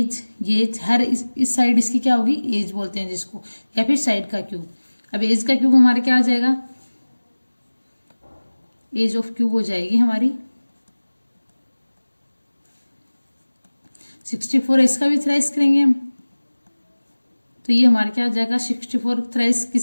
हर इस साइड इसकी क्या होगी, एज बोलते हैं जिसको, या फिर साइड का क्यूब। अब एज का क्यूब हमारा क्या आ जाएगा, एज ऑफ क्यूब हो जाएगी हमारी 64। इसका भी थ्राइस करेंगे हम, तो ये हमारा क्या आ जाएगा 64 थ्राइस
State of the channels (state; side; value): inverted; both; correlation -1.00